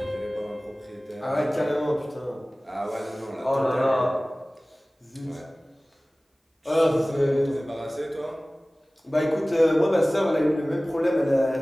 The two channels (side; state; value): both; normal; correlation 0.98